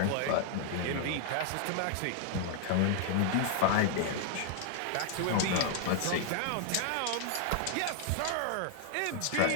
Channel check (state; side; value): different; both; correlation 0.00